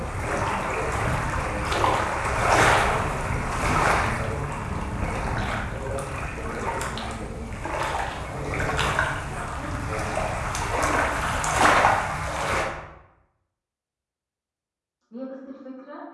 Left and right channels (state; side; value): identical; both; correlation 1.00